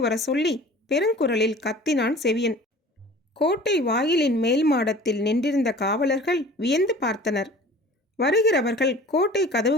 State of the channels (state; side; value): normal; both; correlation 0.44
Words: வர சொல்லி பெருங்குரலில் கத்தினான் செவியன். கோட்டை வாயிலின் மேல் மாடத்தில் நின்றிருந்த காவலர்கள் வியந்து பார்த்தனர். வருகிறவர்கள் கோட்டை